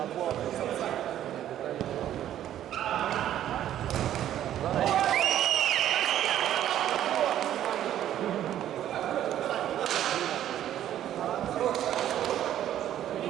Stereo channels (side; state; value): left; quieter; 11.6 dB